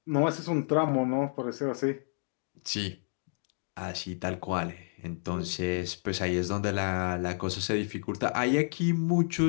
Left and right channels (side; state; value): right; silent; digital silence